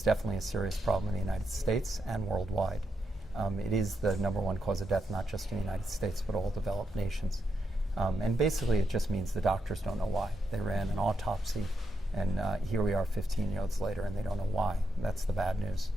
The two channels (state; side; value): normal; both; correlation 0.83